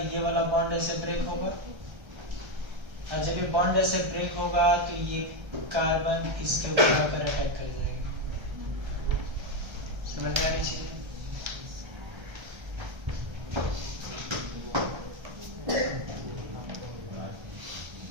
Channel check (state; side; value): late; left; 1.3 ms